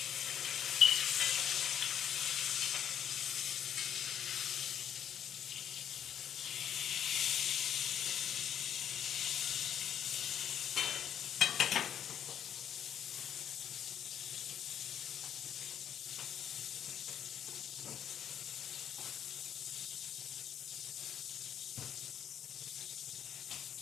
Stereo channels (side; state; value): right; quieter; 9.4 dB